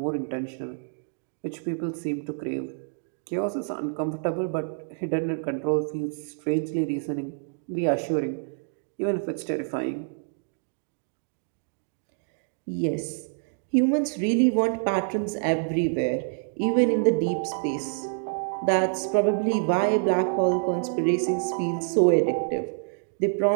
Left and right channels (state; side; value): silent; left; digital silence